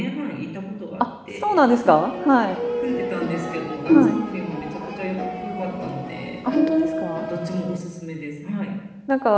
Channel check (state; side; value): identical; both; correlation 1.00